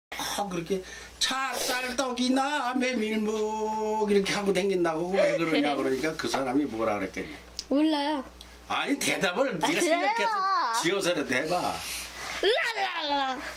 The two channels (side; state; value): both; identical; correlation 1.00